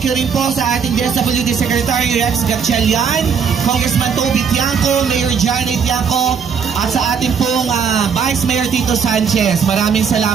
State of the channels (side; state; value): left; quieter; 6.6 dB